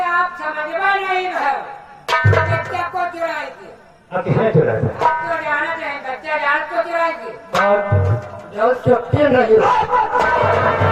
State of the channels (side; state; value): both; identical; correlation 1.00